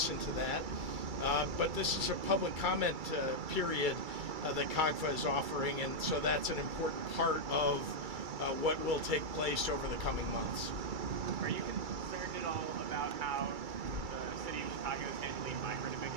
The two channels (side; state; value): left; late; 2.3 ms